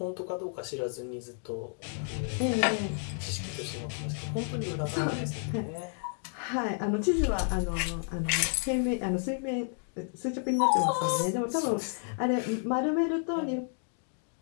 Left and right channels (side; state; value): right; silent; 57 dB below the other